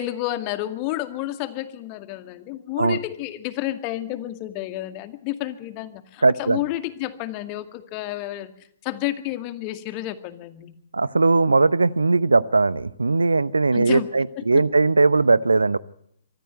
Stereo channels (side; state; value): both; inverted; correlation -0.83